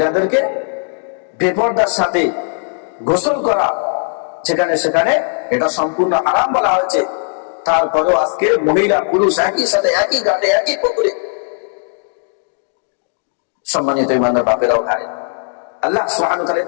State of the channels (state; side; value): silent; right; 61 dB below the other